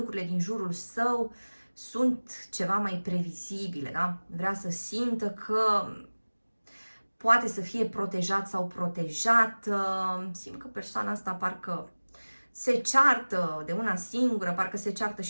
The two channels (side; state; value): both; inverted; correlation -1.00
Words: din jurul său sunt ceva mai previzibile, da? Vrea să simtă că poate să fie protejat sau protejată. Simt că persoana asta parcă se ceartă de una singură, parcă se ceartă